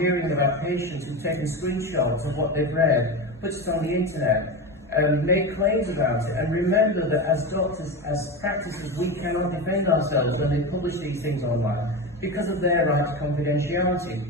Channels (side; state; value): both; normal; correlation 0.21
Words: about patients who've taken screenshots of what they've read, put it on the internet, made claims about it. And remember that as doctors, as practitioners, we cannot defend ourselves when they publish these things online because of their right to confidentiality.